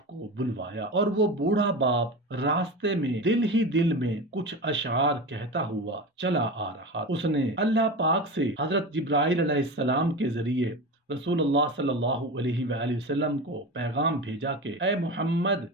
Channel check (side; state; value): both; normal; correlation 0.26